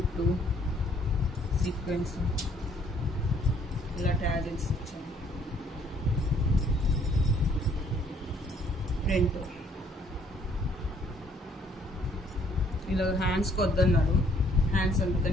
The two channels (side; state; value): both; normal; correlation 0.63